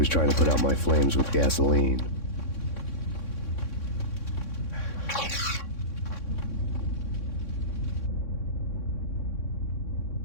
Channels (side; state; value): right; late; 3.6 ms